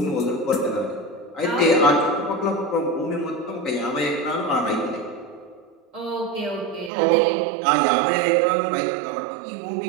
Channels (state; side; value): drops out; left; at 6.9 s